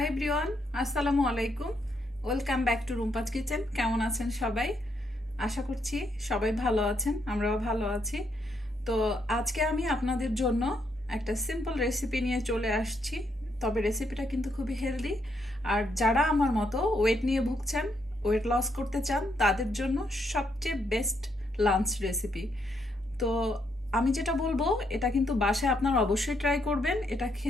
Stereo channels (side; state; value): both; normal; correlation 0.76